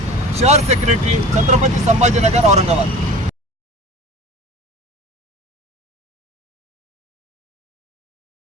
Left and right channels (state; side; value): normal; both; correlation 0.39